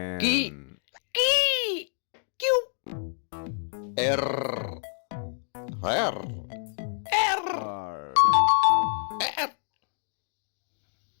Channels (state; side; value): silent; right; digital silence